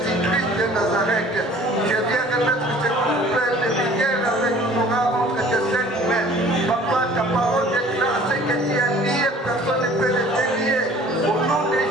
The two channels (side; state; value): both; normal; correlation 0.50